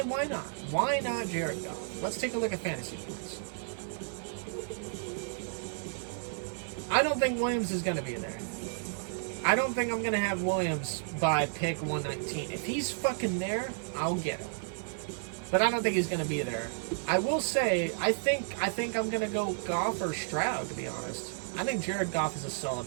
not? Why not Jared Goff? Let's take a look at fantasy points. I don't think Williams is going to be there. I don't think I'm going to have Williams by pick 119. If he's fucking there, I'll get him. But I don't think he's going to be there. I will say, I think I'm going to go Goff or Stroud, to be honest. I think Jared Goff is a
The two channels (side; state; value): left; silent; 56 dB below the other